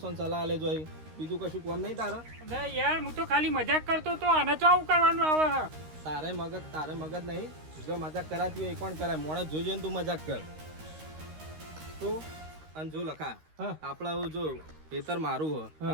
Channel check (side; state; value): left; late; 13 ms